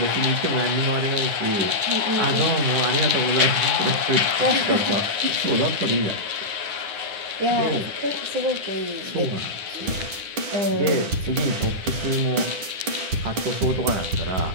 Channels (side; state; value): left; late; 9.9 ms